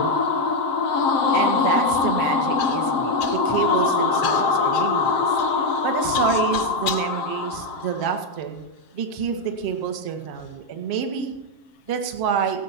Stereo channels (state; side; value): late; right; 7.5 ms